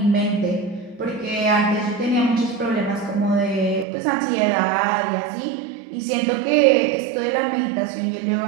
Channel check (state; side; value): drops out; left; at 3.9 s